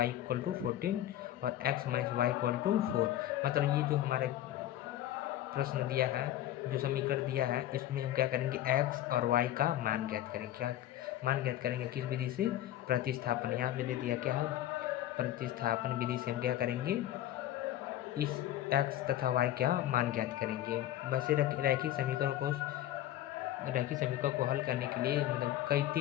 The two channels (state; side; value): quieter; right; 13.0 dB